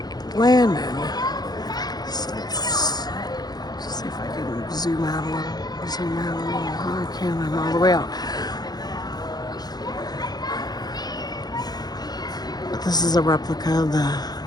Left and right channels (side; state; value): right; late; 0.19 ms